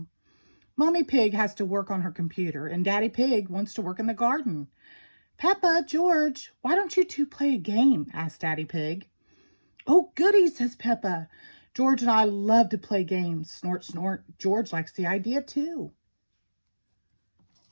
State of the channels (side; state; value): both; inverted; correlation -1.00